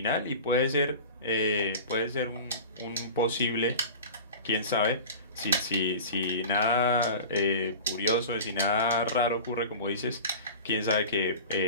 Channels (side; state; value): both; inverted; correlation -0.36